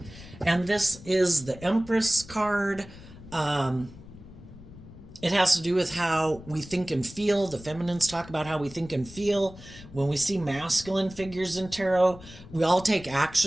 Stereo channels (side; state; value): left; noise; rumble, 17 dB below the sound